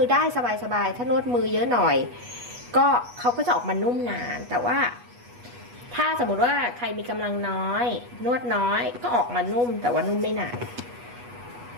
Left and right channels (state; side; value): late; left; 8.2 ms